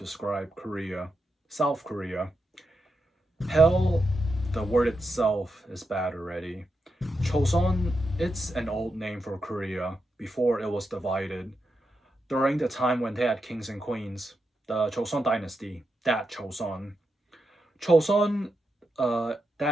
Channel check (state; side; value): normal; both; correlation 0.86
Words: Korea, South Korea. Hell, the word itself is bad already. Choson, it's an old name for Korea before it was divided. During the time when they had kings and queens, the Choson dynasty, that Choson. Choson,